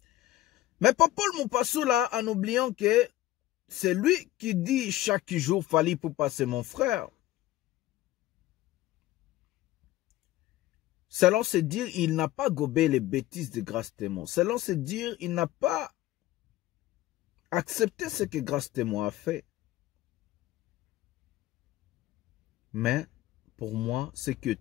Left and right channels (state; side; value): quieter; right; 15.5 dB